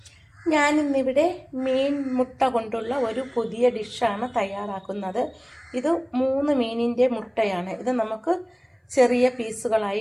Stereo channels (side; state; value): both; identical; correlation 1.00